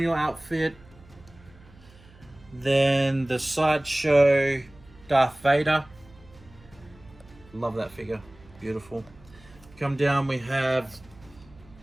outfit. Then the Sideshow Darth Vader. Love that figure. Beautiful. Come down, we have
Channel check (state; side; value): noise; right; hum, 25 dB below the sound